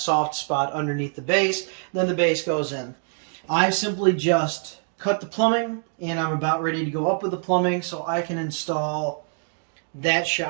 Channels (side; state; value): left; silent; digital silence